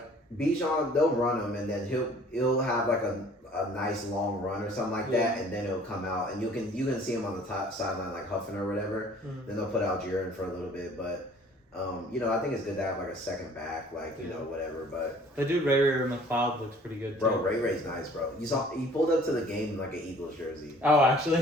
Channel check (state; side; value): normal; both; correlation 0.53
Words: Bijan, they'll run him, and then he'll have like a nice long run or something like that, and then it'll come out, and you can see him on the top sideline like huffing or whatever. Then they'll put out Jaron for a little bit, but. I think it's good to have like a second back, like you know, whatever. But the dude Ray McLeod looks pretty good too. Bro, Ray's nice, bro. You saw he pulled up to the game in like an Eagles jersey. Oh,